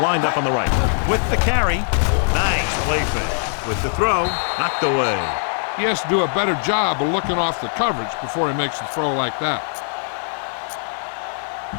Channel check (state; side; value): silent; right; 65 dB below the other